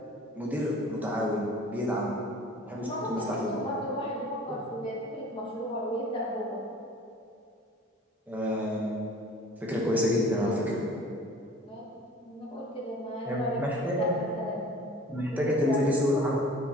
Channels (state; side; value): normal; both; correlation 0.46